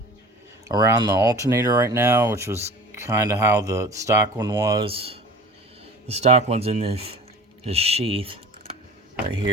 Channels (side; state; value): both; normal; correlation 0.41